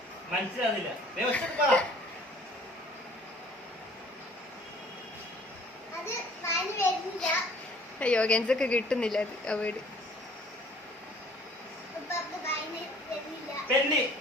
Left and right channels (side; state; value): both; normal; correlation 0.54